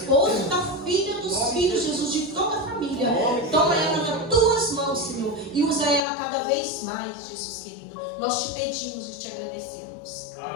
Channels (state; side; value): drops out; right; at 6.1 s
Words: da filha, dos filhos, Jesus, de toda a família. Toma ela nas tuas mãos, Senhor, e usa ela cada vez mais, Jesus querido. Nós te pedimos e te agradecemos.